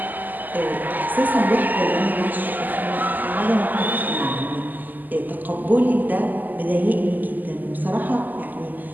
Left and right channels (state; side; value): late; left; 0.085 ms